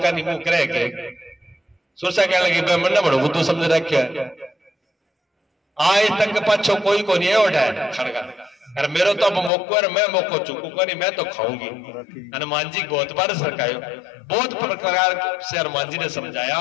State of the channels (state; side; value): drops out; right; at 9.5 s